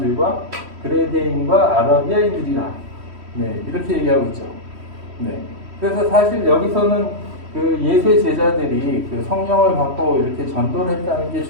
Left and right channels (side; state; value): left; late; 3.1 ms